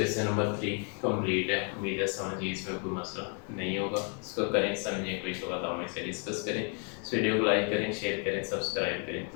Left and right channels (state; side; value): quieter; right; 39.4 dB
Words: नंबर 3 कंप्लीट है। उम्मीद है समझिए, इसमें कोई मसला नहीं होगा। इसको करें समझें, कोई तो बताओ, मैं से डिस्कस करें। इस वीडियो को लाइक करें, शेयर करें, सब्सक्राइब करें,